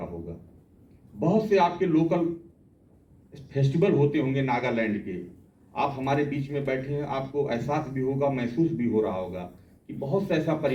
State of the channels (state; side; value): identical; both; correlation 1.00